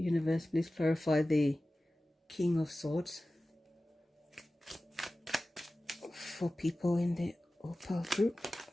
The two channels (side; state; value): both; normal; correlation 0.96